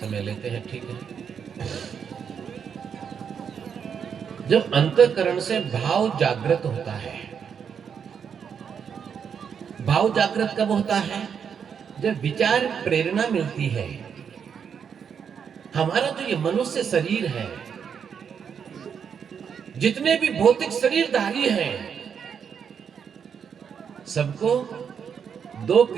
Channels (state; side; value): quieter; left; 7.2 dB